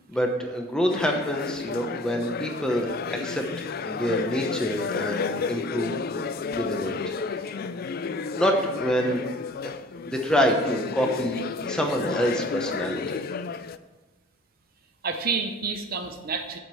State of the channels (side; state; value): both; normal; correlation 0.49